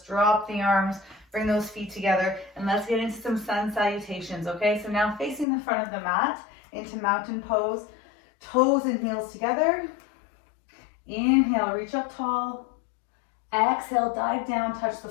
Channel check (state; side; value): drops out; right; at 5.5 s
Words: the arms, bring those feet together, and let's get into some sun salutations, okay? So now facing the front of the mat into mountain pose, toes and heels together. Inhale, reach up tall. Exhale, dive down, touch the